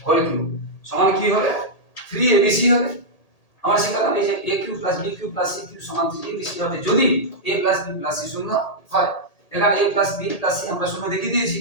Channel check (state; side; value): late; right; 1.8 ms